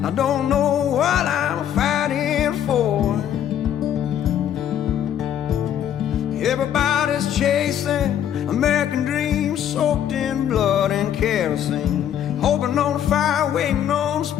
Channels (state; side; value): quieter; right; 10.1 dB